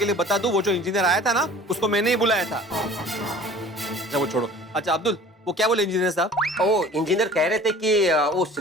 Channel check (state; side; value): normal; both; correlation 0.45